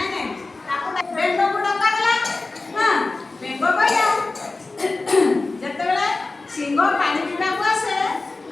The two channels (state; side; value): quieter; right; 3.5 dB